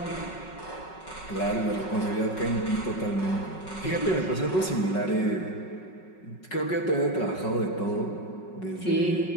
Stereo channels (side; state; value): right; late; 5.4 ms